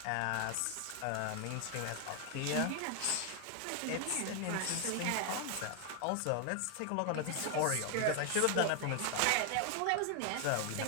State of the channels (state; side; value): different; both; correlation 0.00